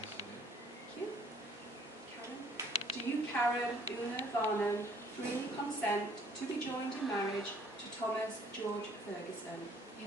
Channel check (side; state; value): both; normal; correlation 0.60